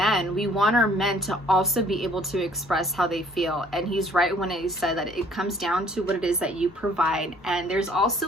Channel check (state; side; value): normal; both; correlation 0.58